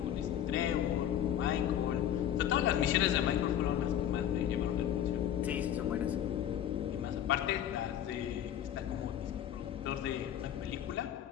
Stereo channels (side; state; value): right; quieter; 10.6 dB